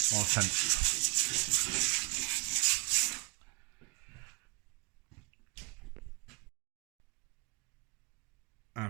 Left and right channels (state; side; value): quieter; left; 26.7 dB